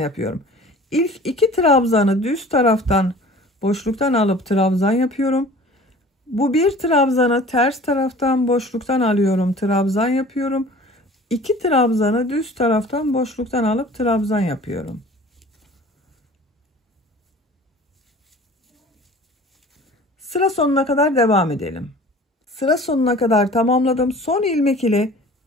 İlk 2 trabzanı düz taraftan boşluktan alıp trabzan yapıyorum. Bu bir trabzanı ters taraftan boşluktan alıyorum, trabzan yapıyorum. 2 trabzanı düz taraftan boşluktan alıp trabzan yapıyorum. Sıra sonuna kadar devam edelim. Sıra sonuna kadar tamamladım. Son ilmek ile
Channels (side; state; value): both; normal; correlation 0.45